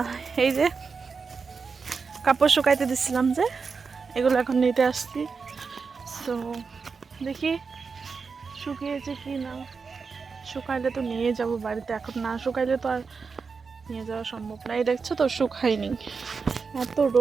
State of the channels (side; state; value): left; quieter; 5.1 dB